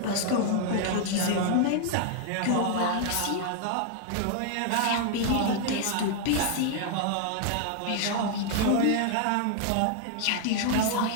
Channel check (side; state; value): both; different; correlation 0.00